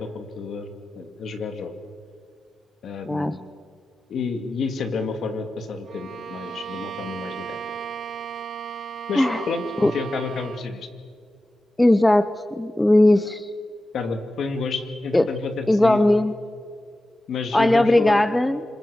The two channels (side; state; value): both; normal; correlation 0.94